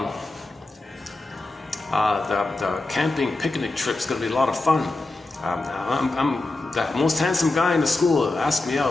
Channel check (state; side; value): quieter; right; 3.0 dB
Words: The camping picnic trip's going to be a lot of fun. I'm the most handsome guy in the school. Ask me